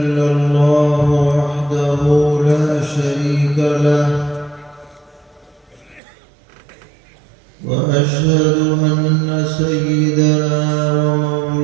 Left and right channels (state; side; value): drops out; left; at 6.0 s